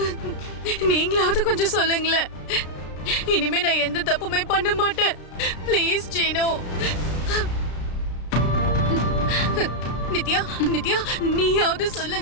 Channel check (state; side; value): late; right; 33 ms